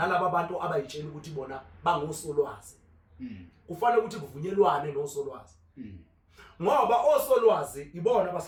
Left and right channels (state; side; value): identical; both; correlation 1.00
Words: bantu abayitshela ukuthi bona bangosolwazi kufanele ukuthi kuvunyelwane nosolwazi ngoba osolwazi ibona